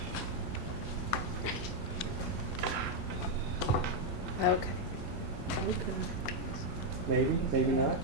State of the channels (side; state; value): both; normal; correlation 0.01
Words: Okay. Maybe not.